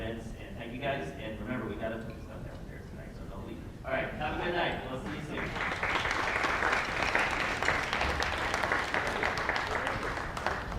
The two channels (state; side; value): identical; both; correlation 1.00